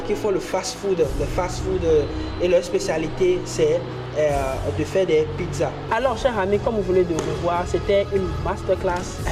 qui font le fast-food. Le fast-food et leur spécialité, c'est de faire des pizzas. Alors, chers amis, comme vous venez de le voir, c'était une masterclass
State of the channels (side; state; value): both; identical; correlation 1.00